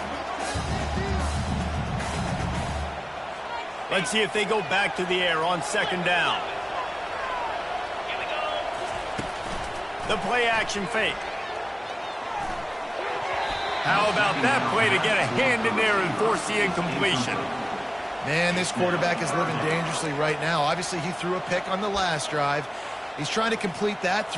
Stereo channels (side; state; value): both; identical; correlation 1.00